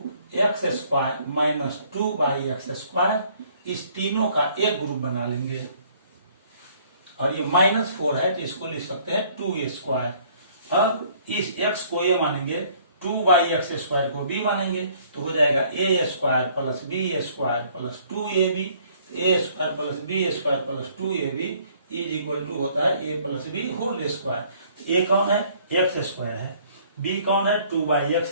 x square minus 2 by x square, इस तीनों का एक ग्रुप बना लेंगे और ये -4 है तो इसको लिख सकते हैं 2a स्क्वायर। अब इस x को a मानेंगे, 2 बाई एक्स स्क्वायर को b मानेंगे, तो हो जाएगा a square plus b square plus 2ab। a square plus b square plus 2ab is equal to होता है a plus b whole square. a कौन है, एक्स स्क्वायर है, b कौन है, 2 बाई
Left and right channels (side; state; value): both; inverted; correlation -0.60